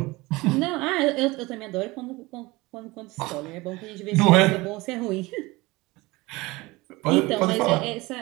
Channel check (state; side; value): quieter; left; 22.0 dB